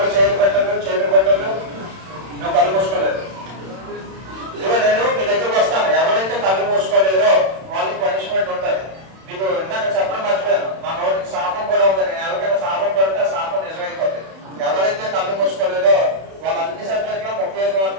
చేతులు పెట్టదు. నువ్వు కళ్ళు మూసుకోలేదు. ఇదిగో నేను మీ దగ్గరకు వస్తాను. ఎవరైతే కళ్ళు మూసుకోలేదో వాళ్ళకి పనిష్మెంట్ ఉంటుంది. మీకు ఇందాక చెప్పడం మర్చిపోయాను, మా నోటికి శాపం కూడా ఉంది. నేను ఎవరికైనా శాపం పెడితే ఆ శాపం నిజమైపోతుంది. ఎవరైతే కళ్ళు మూసుకోలేదో వాళ్ళ అన్ని సబ్జెక్టులో 35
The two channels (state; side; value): late; left; 31 ms